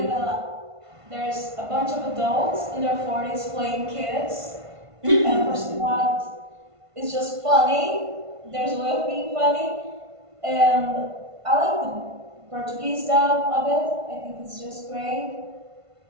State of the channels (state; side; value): late; left; 1.5 ms